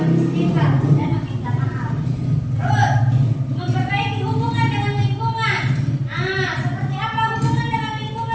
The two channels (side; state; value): both; identical; correlation 1.00